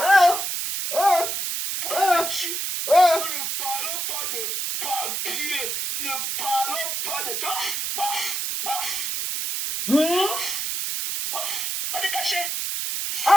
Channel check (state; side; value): noise; right; hiss, 2 dB below the sound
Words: Pourquoi tu ne parlons pas de papier. Ne parlons pas de temps. Pas te cacher.